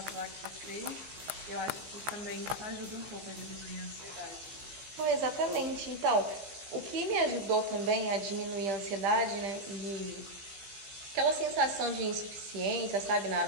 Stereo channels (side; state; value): left; late; 15 ms